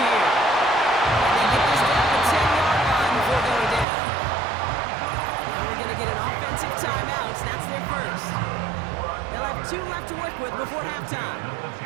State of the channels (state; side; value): drops out; left; at 3.9 s